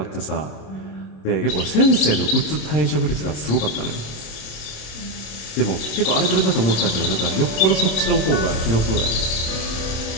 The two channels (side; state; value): right; late; 27 ms